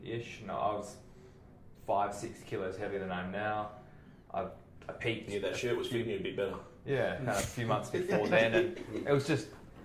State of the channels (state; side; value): identical; both; correlation 1.00